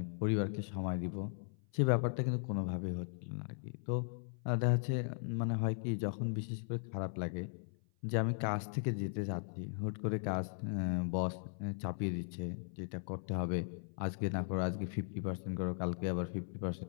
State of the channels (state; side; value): silent; right; 52 dB below the other